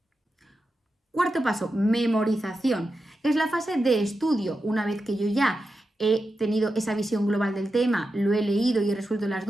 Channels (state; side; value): normal; both; correlation 0.90